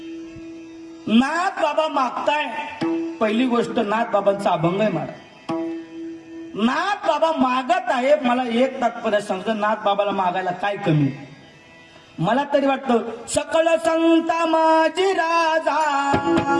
नाथ बाबा मागताय, पहिली गोष्ट नाथ बाबांचा अभंग आहे महाराज. नाथ बाबा मागत आहे. मला एक तात्पर्य सांगतो, नाथ बाबाला मागायला काय कमी. मला तरी वाटतं सकळ संता माझी राजा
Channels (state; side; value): identical; both; correlation 1.00